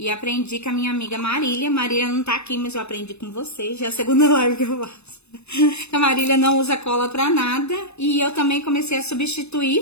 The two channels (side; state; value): right; late; 0.80 ms